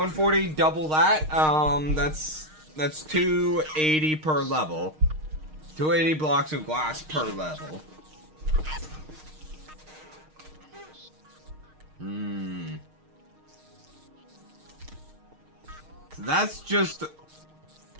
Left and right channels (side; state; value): left; late; 6.5 ms